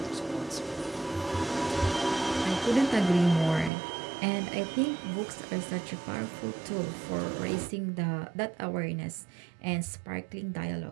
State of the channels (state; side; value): drops out; left; at 3.7 s